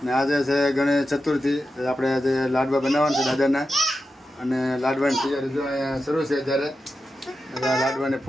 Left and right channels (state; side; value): normal; both; correlation 0.90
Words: ને આજે છે ગણેશ ચતુર્થી. આપણે આજે લાડવા બનાવવાના છે દાદાના. અને લાડવાની તૈયારી જો અહીંયા શરૂ છે ત્યારે લાડવાની